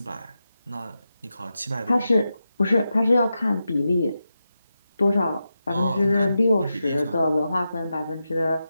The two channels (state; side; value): inverted; both; correlation -0.89